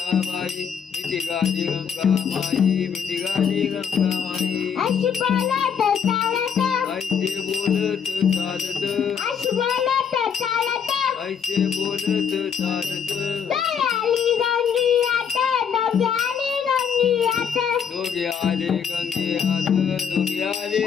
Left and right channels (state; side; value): quieter; right; 7.2 dB